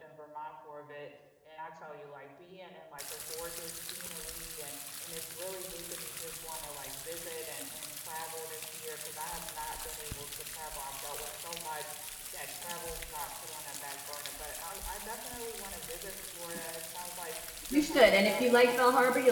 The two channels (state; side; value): identical; both; correlation 1.00